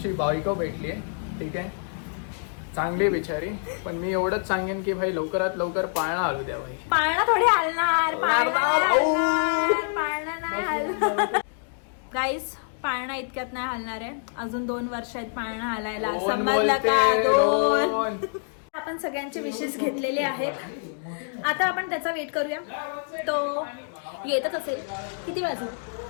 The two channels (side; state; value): right; silent; digital silence